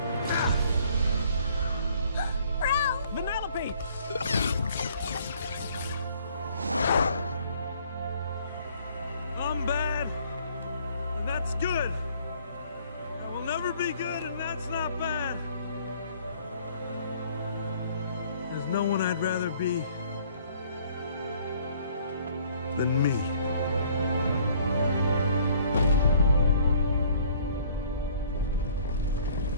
Vanellope! I'm bad, and that's good. I will never be good, and that's not bad. There's no one I'd rather be than me.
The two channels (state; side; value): inverted; both; correlation -0.58